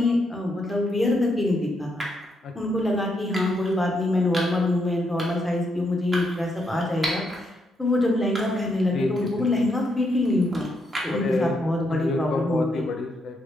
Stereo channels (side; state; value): both; normal; correlation 0.78